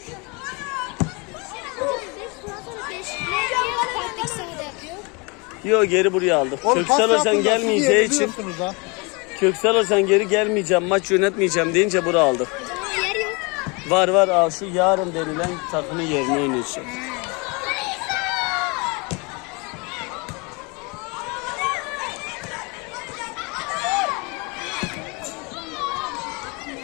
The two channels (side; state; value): right; quieter; 29.4 dB